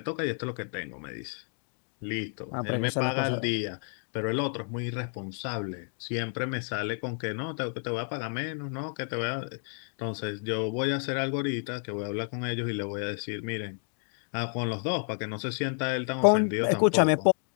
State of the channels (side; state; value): right; silent; 57 dB below the other